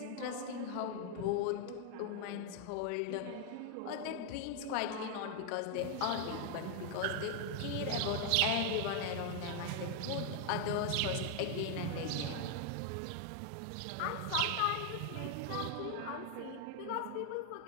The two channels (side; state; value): both; different; correlation 0.00